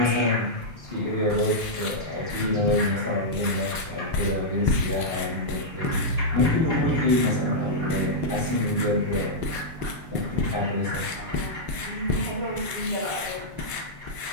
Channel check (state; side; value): late; left; 6.5 ms